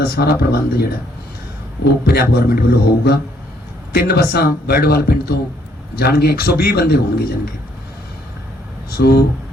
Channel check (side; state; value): both; normal; correlation 0.68